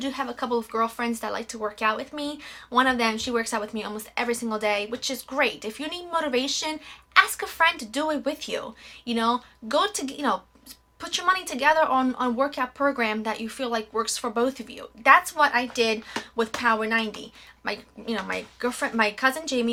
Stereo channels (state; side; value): identical; both; correlation 1.00